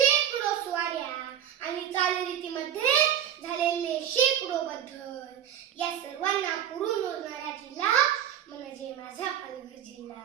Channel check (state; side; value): quieter; left; 10.0 dB